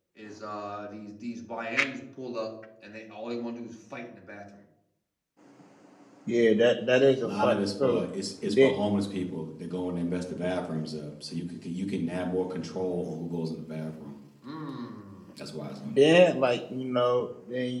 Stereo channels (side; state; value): both; identical; correlation 1.00